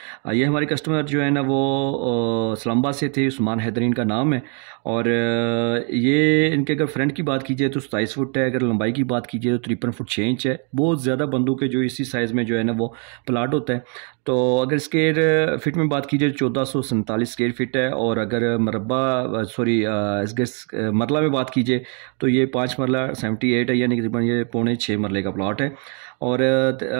ये हमारे कस्टमर जो है ना वो इस्लामाबाद से थे, उस्मान हैदरीन का नाम है। और ये इनके अगर फ्रंट की बात कीजिए तो 27 फुट है, अगर लंबाई की बात कीजिए तो 53 फुट 6 इंच है। बहुत ज़्यादा बंदों के जो इसी साइज़ में जो है ना वो प्लाट होता है। तो अगर स्क्वायर फिट में बात कीजिए 1447 स्क्वायर फिट है। और अगर मरला में बात कीजिए तो ये 5 मरला 78 है, यानी कि तकरीबन ये पौने 6 मरले का प्लाट है। और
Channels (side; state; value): left; quieter; 38.9 dB